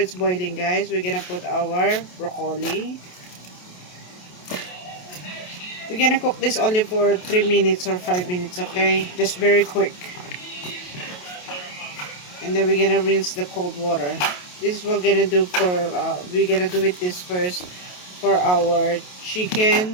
boiling, guys, we're gonna put our broccoli. We're gonna cook this only for 3 minutes or 5 minutes, okay? Just very quick. And then we're gonna rinse the cold water. This is what we're gonna do for, we're gonna do it this first for our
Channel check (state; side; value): late; right; 28 ms